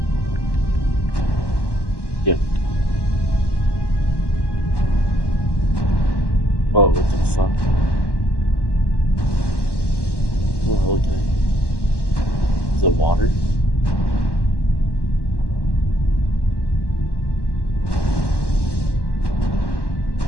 Yep. Whoa, what the fuck? Oh, okay. Is it water?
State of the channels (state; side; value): late; right; 1.1 ms